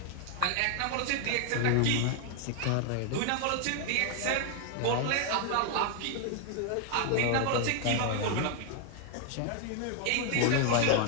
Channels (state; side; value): different; both; correlation 0.00